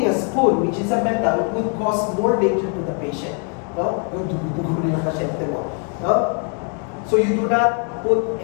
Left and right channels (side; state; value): right; quieter; 39.0 dB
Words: a spoon, which is a metal, would cause more danger to the patient. No? No? So you do not put